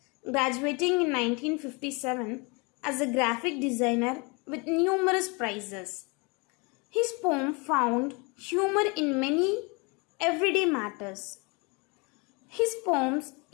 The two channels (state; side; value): quieter; right; 29.8 dB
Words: graduating in 1957 as a graphic designer with numerous prizes. His poem found humor in many everyday matters. His poems